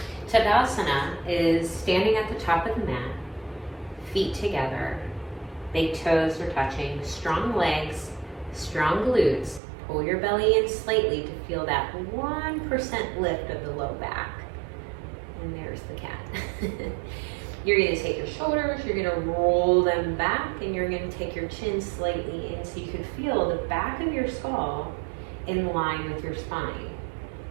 Tadasana is standing at the top of the mat, feet together, big toes are touching, strong legs, strong glutes. Pull your belly in slightly to feel that 1% lift of the low back. And there's the cat. You're going to take your shoulders, you're going to roll them back, and you're going to take your chin slightly in so you can feel the back of your skull in line with your spine.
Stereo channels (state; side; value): drops out; left; at 9.6 s